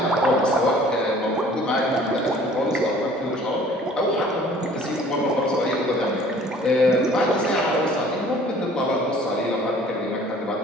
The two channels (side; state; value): both; normal; correlation 0.52